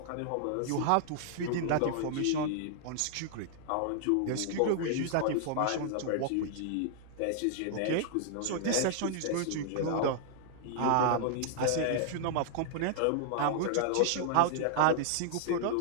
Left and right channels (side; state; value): both; different; correlation -0.01